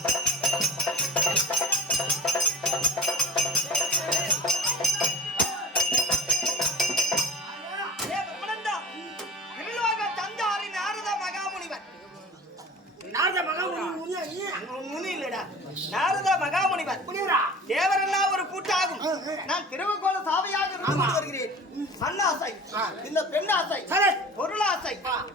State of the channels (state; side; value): normal; both; correlation 0.37